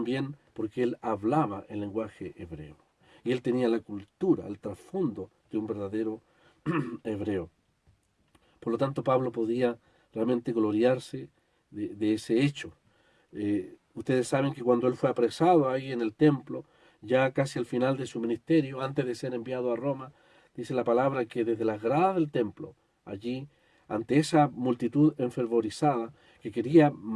porque él hablaba el lenguaje hebreo. Y él tenía la cultura, el trasfondo de un verdadero hebreo. Por lo tanto, Pablo podía realmente gloriarse de ese hecho. Ustedes saben que cuando él fue apresado ahí en el templo, ya casi al final de su ministerio, antes de ser enviado a Roma, dice la palabra que desde las gradas del templo, allí, ante esa multitud enfervorizada que quería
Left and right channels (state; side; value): identical; both; correlation 1.00